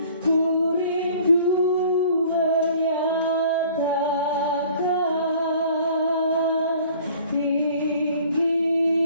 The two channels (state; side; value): inverted; both; correlation -0.51